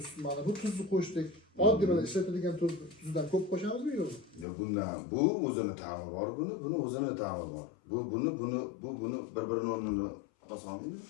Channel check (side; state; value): right; drops out; at 4.5 s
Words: bu tuzni qo'shdik. Oddiy mana ishlatilgan tuzdan ko'p qo'shamizmi yo'qmi? Yo'q, bu o'zini ta'mi bor, buni o'zini ta'mi bor. Buni bir-birini o'rnini oson.